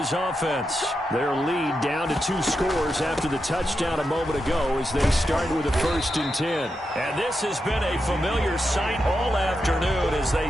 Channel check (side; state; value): both; normal; correlation 0.87